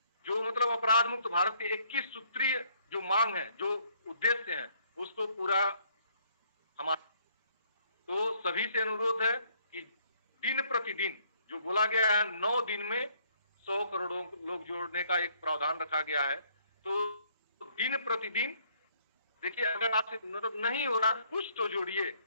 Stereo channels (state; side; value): inverted; both; correlation -0.65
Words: जो मतलब अपराध मुक्त भारत के 21 सूत्रीय जो मांग है, जो उद्देश्य है, उसको पूरा हमारा, तो सभी से अनुरोध है कि दिन प्रतिदिन जो बोला गया है 9 दिन में 100 करोड़ लोग जोड़ने का एक प्रावधान रखा गया है, तो दिन प्रतिदिन देखिए, अगर आपसे मतलब नहीं हो रहा कुछ तो जोड़िए।